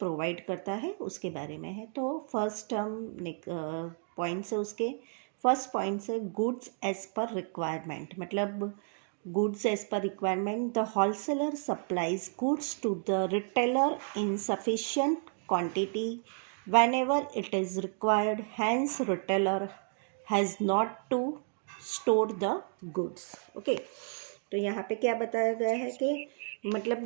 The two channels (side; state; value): left; silent; 56 dB below the other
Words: provide करता है उसके बारे में है. तो first हम points है उसके. First points है goods as per requirement. मतलब goods as per requirement. The wholesaler supplies goods to the retailer in sufficient quantity whenever it is required. Hence retailer has not to store the goods. Okay, तो यहाँ पे क्या बताया गया है कि